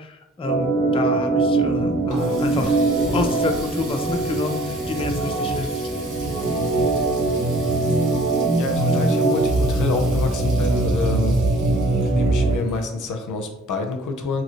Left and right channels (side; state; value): both; normal; correlation 0.53